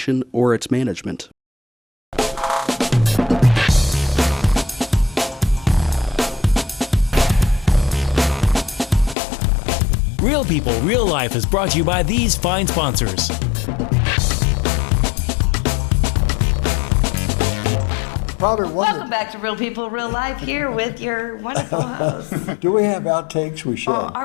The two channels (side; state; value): right; drops out; at 9.2 s